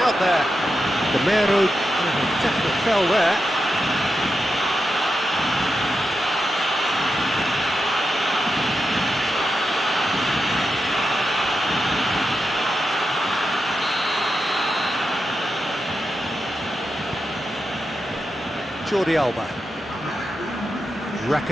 out there. Gamero, definitely fell there. Jordi Alba.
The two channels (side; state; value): both; normal; correlation 0.88